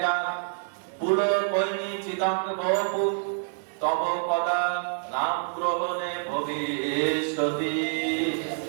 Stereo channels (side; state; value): left; silent; digital silence